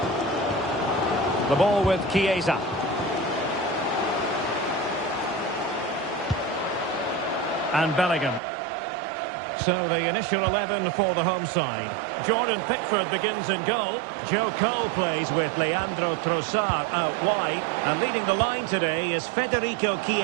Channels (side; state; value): left; drops out; at 8.4 s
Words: The ball with Chiesa. And Bellingham. So the initial 11 for the home side. Jordan Pickford begins in goal. Joe Cole plays with Leandro Trossard out wide. And leading the line today is Federico